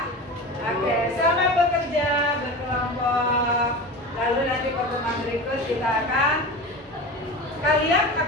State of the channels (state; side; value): normal; both; correlation 0.30